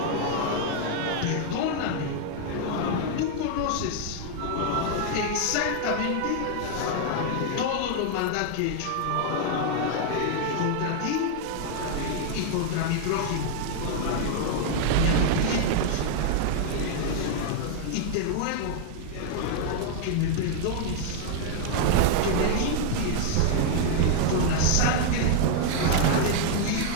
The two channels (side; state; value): both; different; correlation 0.00